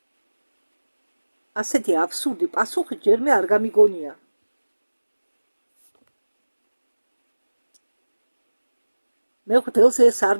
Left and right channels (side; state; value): both; inverted; correlation -1.00